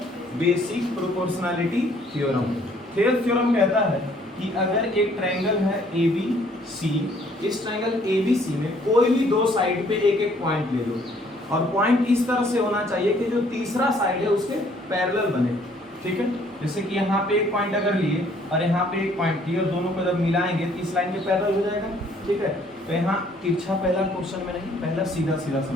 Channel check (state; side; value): normal; both; correlation 0.62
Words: basic proportionality theorem. Thales theorem कहता है कि अगर एक ट्रायंगल है ABC, इस ट्रायंगल ABC में कोई भी दो साइड पे एक एक पॉइंट ले लो, और पॉइंट इस तरह से होना चाहिए कि जो तीसरा साइड है उसके पैरेलल बने, ठीक है? जैसे कि यहाँ पे एक पॉइंट अगर लिए और यहाँ पे एक पॉइंट लिए और दोनों को जब मिलाएंगे तो इस लाइन के पैरेलल हो जाएगा, ठीक है? तो यहाँ तिरछा पहला क्वेश्चन में नहीं, पहला सीधा सीधा